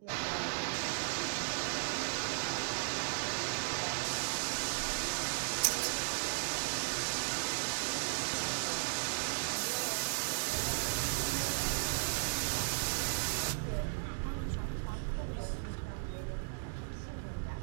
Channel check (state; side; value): silent; left; digital silence